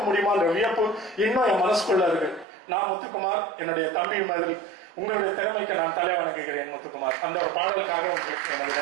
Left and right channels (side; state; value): left; drops out; at 2.5 s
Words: முடியுமான்ற வியப்பு இன்னும் என் மனசுக்குள்ள இருக்கு. நான் முத்துக்குமார், என்னுடைய தம்பி மாதிரி உங்களுடைய திறமைக்கு நான் தலை வணங்குகிறேன் முத்துக்குமார். அந்த ஒரு பாடலுக்காக உங்களுக்கு எனது